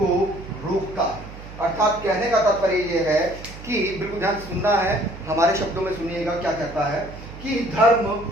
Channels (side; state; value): right; noise; hum, 14 dB below the sound